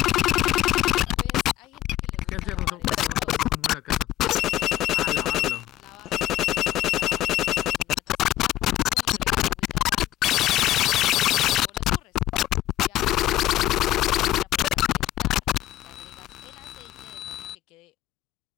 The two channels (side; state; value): right; quieter; 14.7 dB